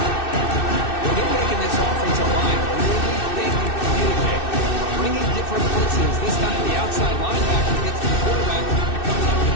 This time the outside linebacker gets the quarterback and comes up with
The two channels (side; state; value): right; late; 2.6 ms